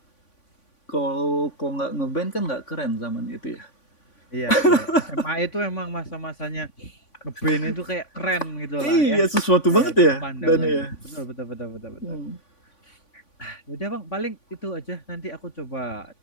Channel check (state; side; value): late; right; 3.5 ms